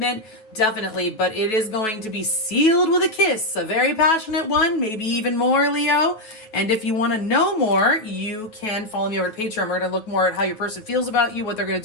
Definitely, but it is going to be sealed with a kiss, a very passionate one, maybe even more, Leo. And if you want to know more, you can follow me over to Patreon. We're going to look more at how your person feels about you, what they're going to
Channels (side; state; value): right; late; 9.2 ms